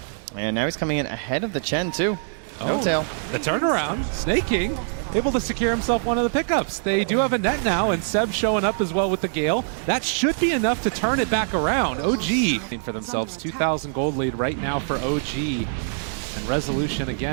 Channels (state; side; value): silent; left; digital silence